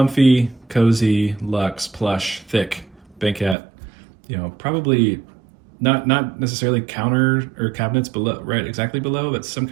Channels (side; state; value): left; drops out; at 3.6 s